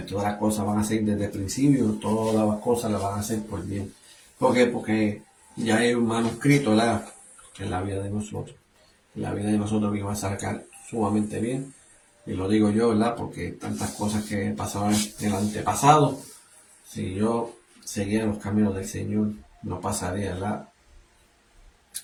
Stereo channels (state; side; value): identical; both; correlation 1.00